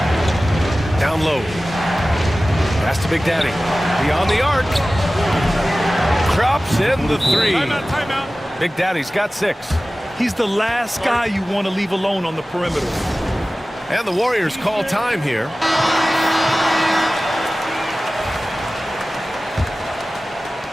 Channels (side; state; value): both; normal; correlation 0.97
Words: Down low. Pass to Big Daddy. Beyond the arc. Drops in the 3. Timeout. Big Daddy's got 6. He's the last guy you want to leave alone on the perimeter. And the Warriors call time here.